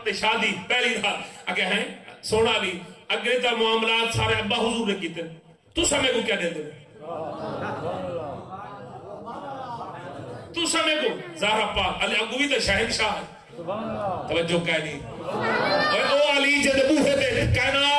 شادی پہلی رات اگے ہیں سونا علی اگے تا معاملات سارے ابا حضور نے کیتے تو سمے کو کیا دے دے تو سمے کو زہرا پاک علی اگوی تے شہنشاہ ہے توجہ کہہ نہیں او علی جے بوہے تے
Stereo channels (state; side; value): identical; both; correlation 1.00